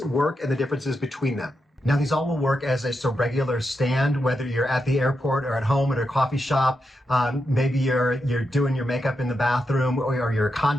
work and the differences between them. Now, these all will work as just a regular stand, whether you're at the airport or at home at a coffee shop. Maybe you're doing your makeup in the bathroom, or you're a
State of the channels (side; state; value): both; normal; correlation 0.86